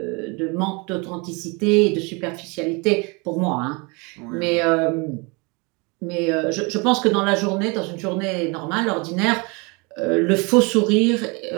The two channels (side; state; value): left; quieter; 29.2 dB